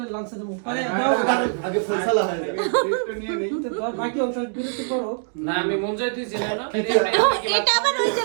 লাঞ্চে দেবো আরে দাও আগে ফয়সালা হয় একটু নিয়ে নেই বাকি অংশ বিরতি করো না আমি মুঞ্জাই থুইছি না এটা আবার ওই যে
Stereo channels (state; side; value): silent; left; digital silence